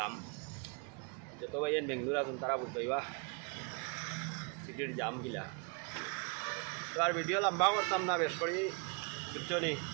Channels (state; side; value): quieter; left; 35.6 dB